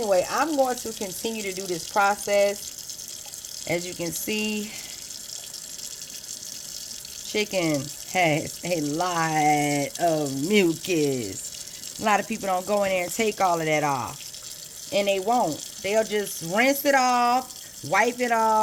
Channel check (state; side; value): identical; both; correlation 1.00